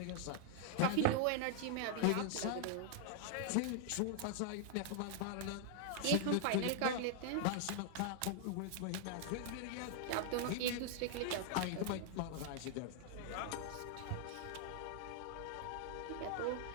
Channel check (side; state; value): both; different; correlation 0.00